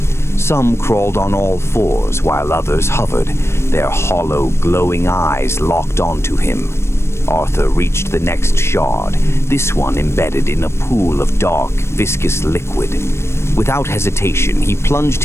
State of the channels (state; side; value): late; right; 0.13 ms